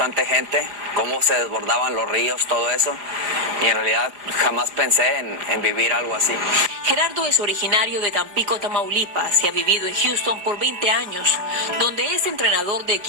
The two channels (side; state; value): left; late; 4.9 ms